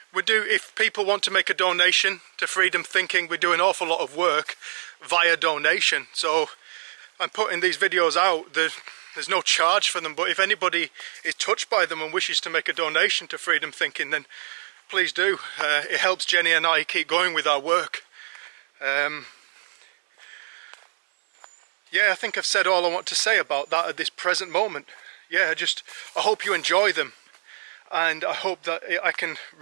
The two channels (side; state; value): left; silent; 60 dB below the other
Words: If people want to make a donation to Freedom Thinking, we do an awful lot of work via donation. So I'm putting these videos out. There's no charge for them, but if anybody is touched by them and wishes to make a donation to Freedom Thinking, then please do. It helps Jenny and I keep going with our work. Yeah, I think I've said all I want to say about that at this present moment. Yeah, I hope you enjoy them, and I hope that I can